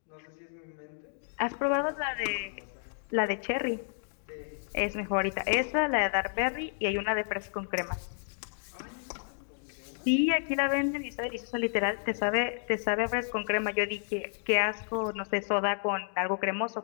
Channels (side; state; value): right; silent; digital silence